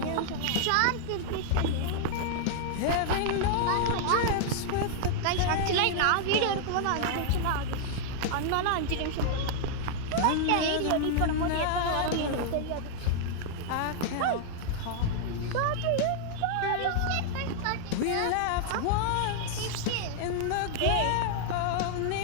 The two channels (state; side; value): different; both; correlation -0.01